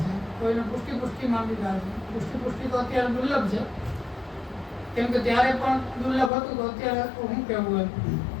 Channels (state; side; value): drops out; right; at 6.3 s